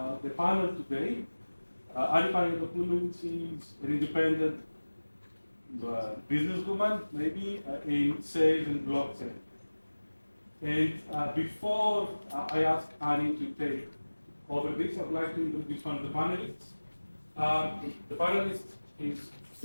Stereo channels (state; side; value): inverted; both; correlation -1.00